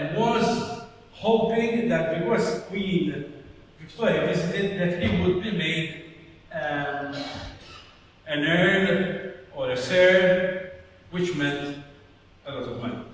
was hoping that because Queen Victoria visited, that he would be made an earl or a sir, which meant a lot of money.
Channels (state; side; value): identical; both; correlation 1.00